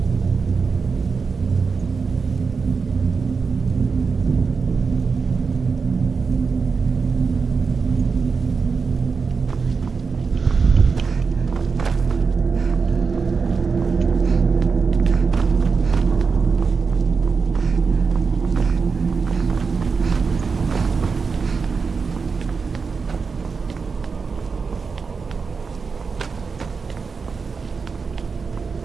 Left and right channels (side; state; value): left; quieter; 5.1 dB